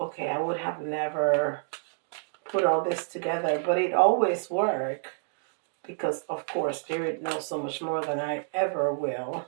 I would have never put all this together, but it always works because, of course, Spirit knows so much more than I ever will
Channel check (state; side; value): silent; left; digital silence